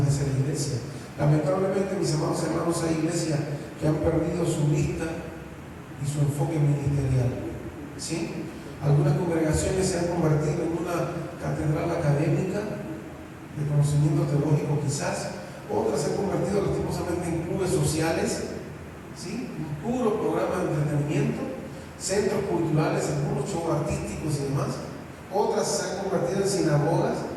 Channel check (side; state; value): both; identical; correlation 1.00